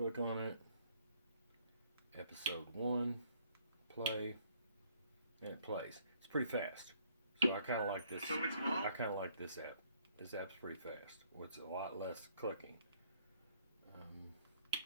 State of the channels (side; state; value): both; inverted; correlation -0.64